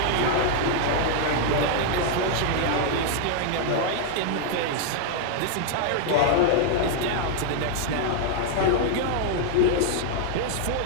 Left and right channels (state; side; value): different; both; correlation 0.00